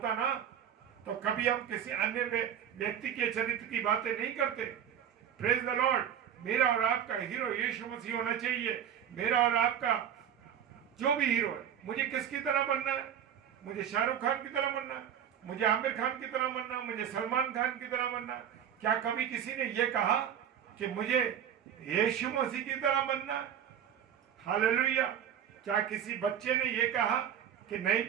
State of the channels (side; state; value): left; quieter; 9.2 dB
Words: ना, तो कभी हम किसी अन्य व्यक्ति के चरित्र की बातें नहीं करते। Praise the Lord. मेरा और आपका हीरो यीशु मसीह होना चाहिए। मेरा और आपका जो भी हीरो है, मुझे किसकी तरह बनना है? मुझे शाहरुख खान की तरह बनना है, मुझे आमिर खान की तरह बनना, मुझे सलमान खान की तरह बनना। क्या कभी किसी ने यह कहा कि मुझे यीशु मसीह की तरह बनना? हालेलुया। क्या किसी बच्चे ने यह कहा कि नहीं